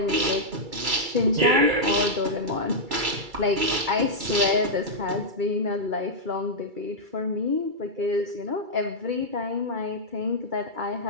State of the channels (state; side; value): late; left; 2.3 ms